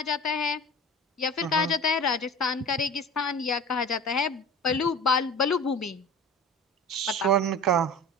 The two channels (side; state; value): both; normal; correlation 0.36